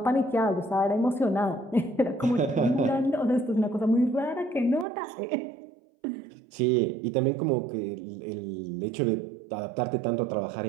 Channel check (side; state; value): left; drops out; at 4.9 s